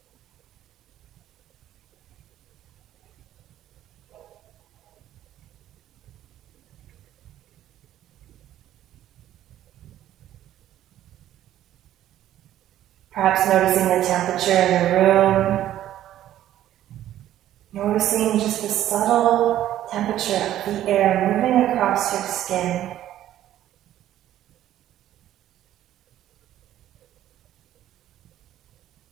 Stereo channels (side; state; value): left; quieter; 12.5 dB